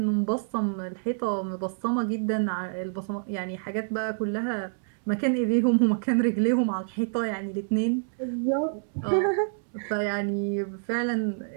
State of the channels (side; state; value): left; silent; digital silence